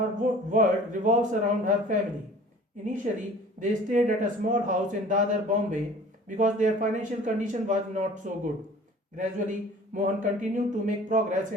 world revolves around her family. Initially, they stayed at a small house in Dadar, Bombay because their financial condition was not so good. Gradually, Mohan continued to make progress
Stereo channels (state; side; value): normal; both; correlation 0.47